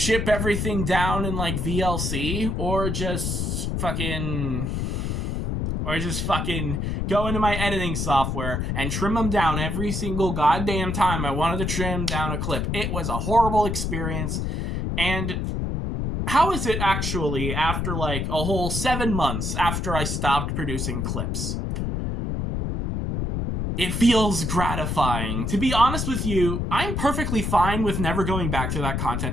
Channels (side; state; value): left; noise; rumble, 1 dB below the sound